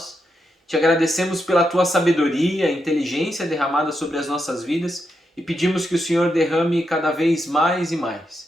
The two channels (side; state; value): both; normal; correlation 0.83